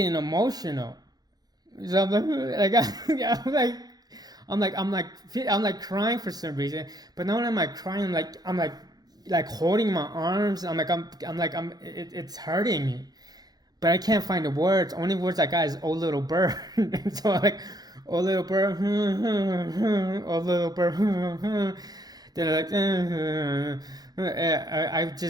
emotional. So I'm like crying for some reason, but not only am I crying, I'm like holding my arms. It's hurting me. But I can't find the words. Only words I got is "oh little bird." And so I'm like, "oh little bird, oh little bird." Then I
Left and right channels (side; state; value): left; late; 0.19 ms